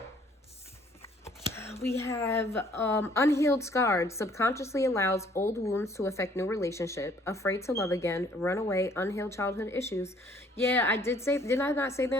We have unhealed scars. Subconsciously allows old wounds to affect new relationship. Afraid to love again. Runaway. Unhealed childhood issues. Yeah, I did I not say that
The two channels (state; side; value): normal; both; correlation 0.60